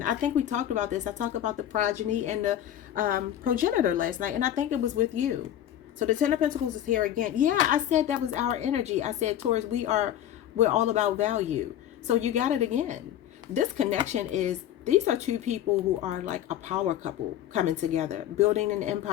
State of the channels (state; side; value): quieter; right; 11.3 dB